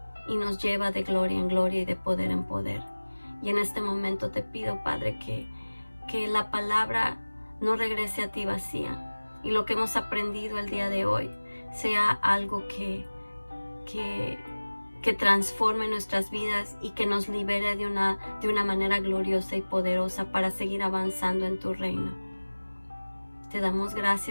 y nos lleva de gloria en gloria y de poder en poder. Y en este momento te pido, Padre, que la palabra no regrese a ti vacía y lo que hemos aprendido el día de hoy sea algo que transforme nuestras vidas y que nos libere de una manera gloriosa y poderosa para seguir avanzando en tu reino. Te damos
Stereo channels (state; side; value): inverted; both; correlation -1.00